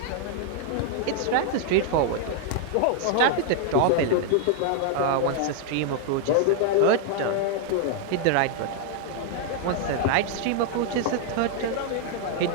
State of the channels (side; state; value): both; different; correlation 0.00